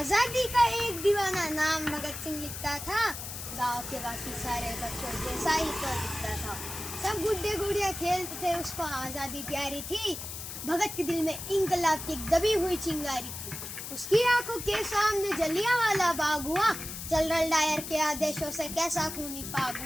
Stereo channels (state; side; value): noise; left; hiss, 8 dB below the sound